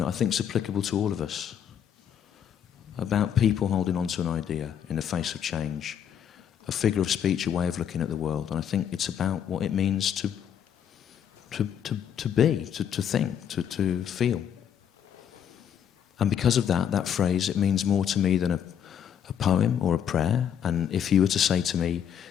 I think is applicable to all of us, about people holding on to an idea in the face of change, a figure of speech, a way of looking at the world. And I think it's about what it means to be, to think, to feel. And because of that phrase, it means more to me than a poem or a prayer. And if you were to say to me,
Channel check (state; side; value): quieter; right; 8.9 dB